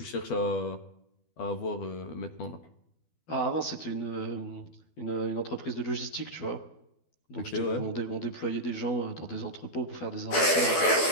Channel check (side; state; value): right; late; 12 ms